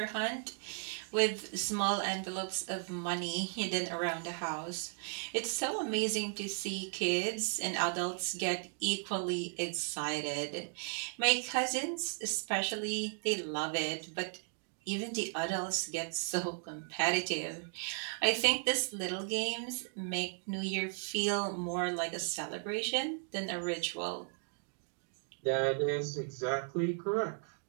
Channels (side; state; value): left; silent; 54 dB below the other